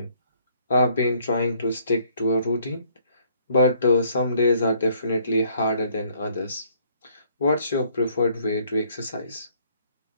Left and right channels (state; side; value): inverted; both; correlation -0.65